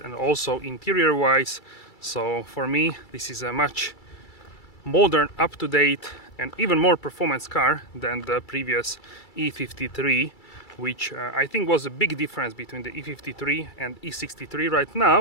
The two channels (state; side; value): late; right; 2.3 ms